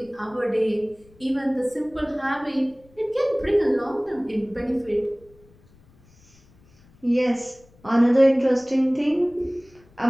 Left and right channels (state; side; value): noise; left; rumble, 29 dB below the sound